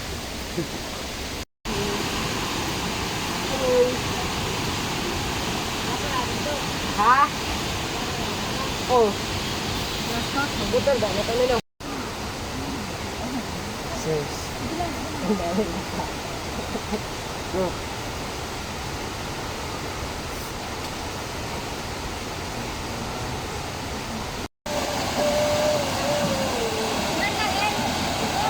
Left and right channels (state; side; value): identical; both; correlation 1.00